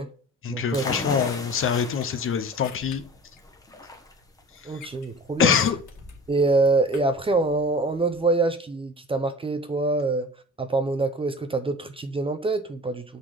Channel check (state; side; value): normal; both; correlation 0.39